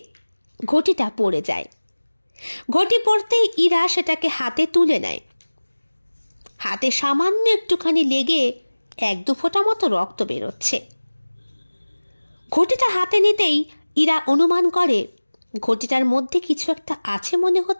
ঘটিটা পড়ে যায়। ঘটি পড়তেই ইরা সেটাকে হাতে তুলে নেয়। হাতে সামান্য একটুখানি লেগে 1-2 ফোঁটা মতো রক্ত বেরোচ্ছে। ঘটিটা হাতে নিতেই ইরা অনুমান করে ঘটিটার মধ্যে কিছু একটা আছে মনে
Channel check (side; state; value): both; inverted; correlation -1.00